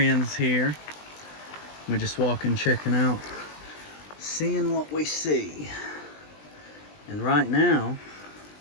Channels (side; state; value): right; late; 20 ms